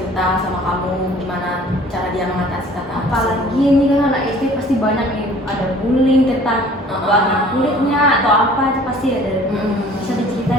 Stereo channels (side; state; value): both; normal; correlation 0.51